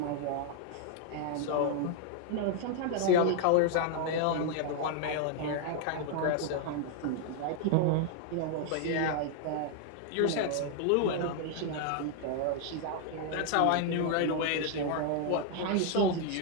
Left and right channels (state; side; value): different; both; correlation 0.00